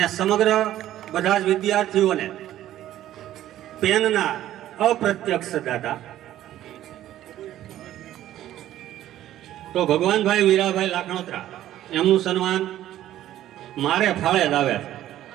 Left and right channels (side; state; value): left; quieter; 13.0 dB